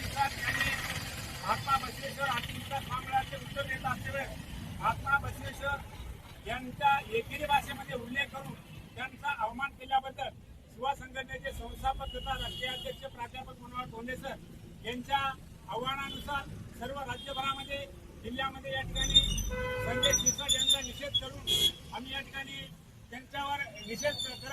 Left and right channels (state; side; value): identical; both; correlation 1.00